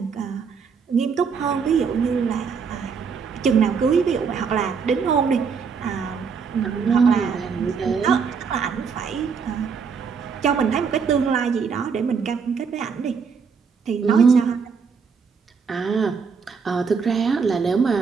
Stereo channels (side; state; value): left; quieter; 5.8 dB